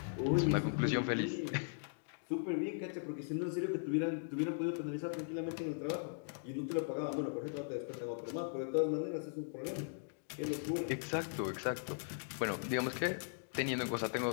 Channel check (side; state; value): right; silent; digital silence